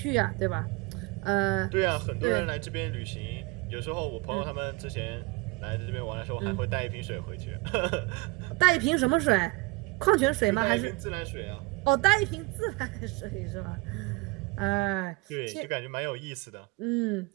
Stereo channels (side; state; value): left; quieter; 24.3 dB